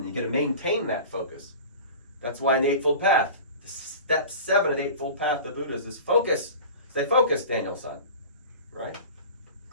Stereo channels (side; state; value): both; inverted; correlation -0.37